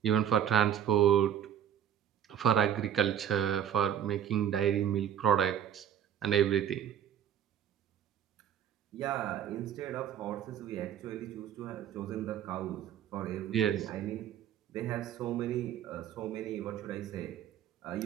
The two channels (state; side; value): quieter; left; 9.7 dB